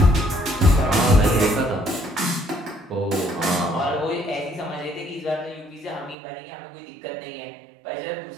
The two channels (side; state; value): left; drops out; at 6.2 s